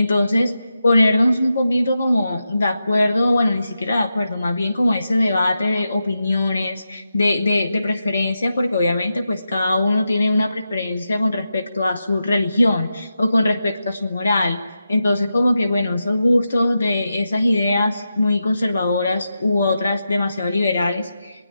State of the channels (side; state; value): both; inverted; correlation -0.89